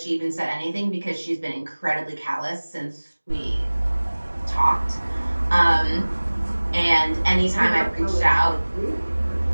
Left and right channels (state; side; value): inverted; both; correlation -1.00